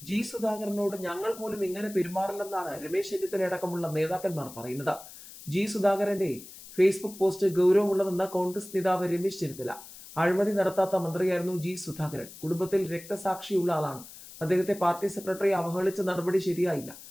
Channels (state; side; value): noise; left; hiss, 16 dB below the sound